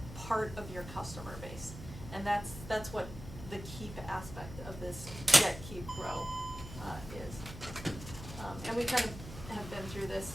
part of your customer base? And that's what the keep aspect of this get, keep, grow is. And we kind of have been through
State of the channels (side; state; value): both; normal; correlation 0.96